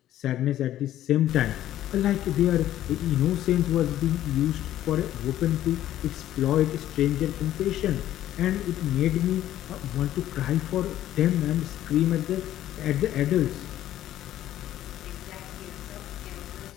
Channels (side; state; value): right; quieter; 12.9 dB